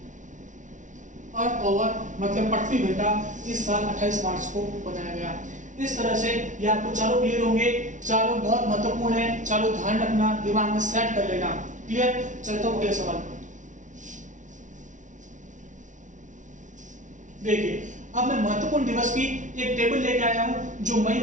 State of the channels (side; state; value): left; late; 0.37 ms